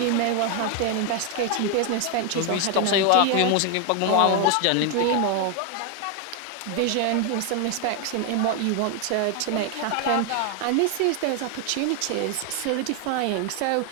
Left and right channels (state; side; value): different; both; correlation 0.01